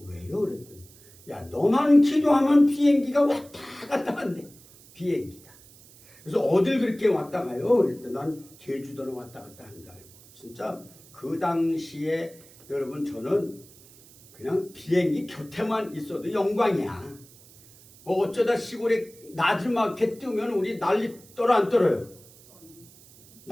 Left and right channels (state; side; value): noise; right; hiss, 24 dB below the sound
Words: 왜요? 그랬더니 야 너만 기도하면 비행기가 왔다 갔다 한대. 비행기가. 그래서 어딜 그렇게 왔다 가요? 그랬더니 난 제주도는 왔다 갔다 하는 줄 알고. 진짜 그 당시에 여러분 저는 그냥 비행기 곁에만 있어도 영광이야. 뭐 어쩌다 시골에 나지막해 뜨면 우리 난리 떨어 안 떨어요?